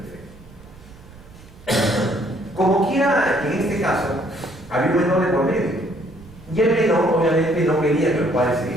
Perfecto. Como quiera, en este caso, había un menor de por medio. Y el menor, obviamente, no quería que los padres se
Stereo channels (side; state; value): right; noise; rumble, 21 dB below the sound